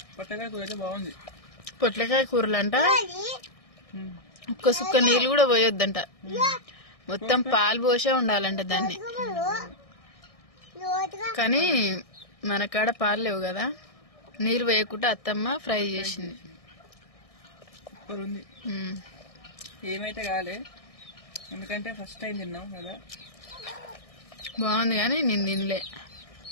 పొట్లకాయ కూర అయితే బాగుంది. పొట్లకాయ కూరలంట ఒక్క సుక్క నీళ్ళు కూడా పోయొద్దంట, మొత్తం పాలు పోసే ఉండాలంట దాన్ని. కానీ మన కాడ పాలు లేవు కదా, నీళ్ళు వేయకుండా అత్తమ్మ ఫ్రై చేసింది. సూపర్ ఉంది. ఏమైతే కాలే, ఎందుకంటే ఫస్ట్ టైం తిన్నాం కదా. బాగుంది కానీ నేను తినలే,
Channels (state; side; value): late; right; 1.6 ms